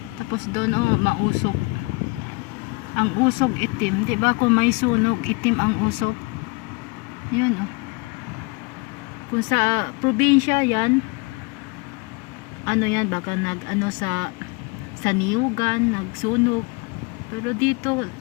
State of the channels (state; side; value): quieter; right; 27.9 dB